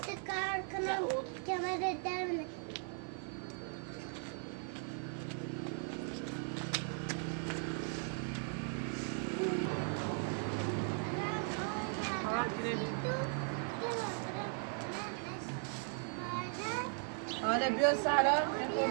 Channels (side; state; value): left; silent; 52 dB below the other